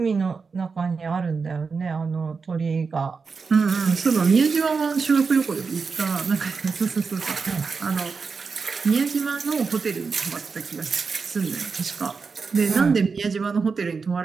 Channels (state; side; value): quieter; left; 5.0 dB